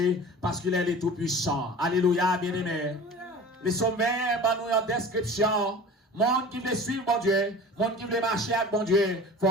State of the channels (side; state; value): both; normal; correlation 0.39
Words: parce qu'il est le Tout-Puissant. Alléluia, bien-aimé. Les sommets, nous en description. Monde qui veut suivre mon Dieu, monde qui veut marcher avec mon Dieu, il ne